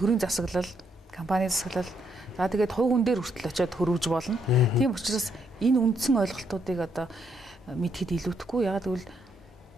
засаглал, компани засаглал, за тэгээд хувь хүн дээр хүртэл очиод хөрвж болно. Тийм учраас энэ үндсэн ойлголтуудыг одоо мэдхэд илүүдэхгүй. Ягаад гэвэл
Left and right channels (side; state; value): both; normal; correlation 0.75